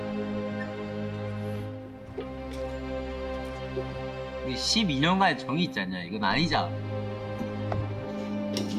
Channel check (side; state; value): both; identical; correlation 1.00